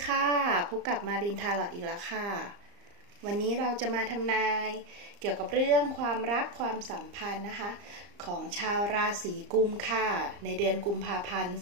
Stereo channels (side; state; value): left; late; 34 ms